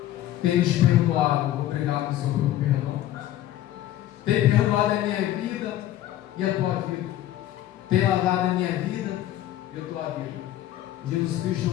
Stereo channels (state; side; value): quieter; right; 13.3 dB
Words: tem nos perdoado. Obrigado, Senhor, pelo perdão. Tem perdoado a minha vida e a tua vida. Tem lavado a minha vida e a tua vida. Jesus Cristo